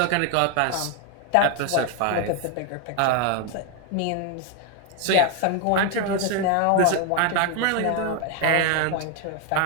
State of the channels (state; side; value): different; both; correlation 0.01